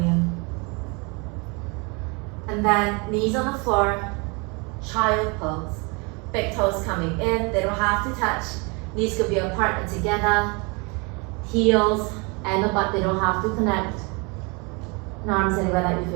you. And then knees on the floor, child pose. Big toes coming in, they don't have to touch. Knees could be apart and together. Heels and the butt, they don't have to connect. And arms anywhere that you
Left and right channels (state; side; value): quieter; left; 30.3 dB